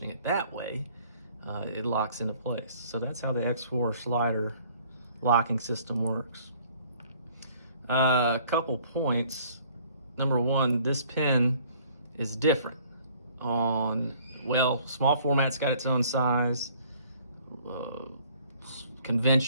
it that way, it locks into place. So that's how the X4 slider locking system works. A couple points. Number one, this pin is different on, well, small format's got its own size.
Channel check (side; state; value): both; inverted; correlation -0.57